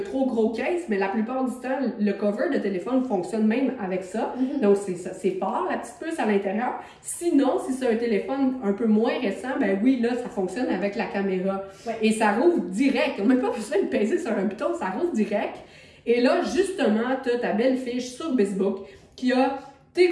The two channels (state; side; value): identical; both; correlation 1.00